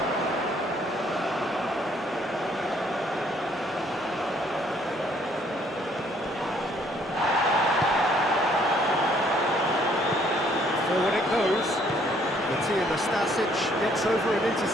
Forward it goes. Matija Nastasic gets over and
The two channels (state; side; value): normal; both; correlation 0.64